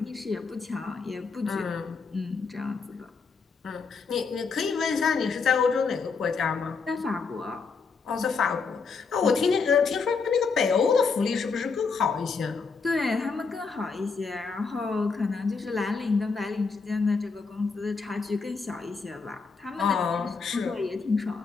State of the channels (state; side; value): quieter; right; 4.9 dB